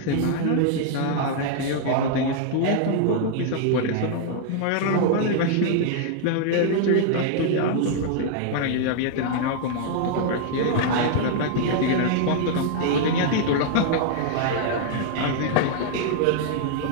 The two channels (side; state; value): both; different; correlation 0.00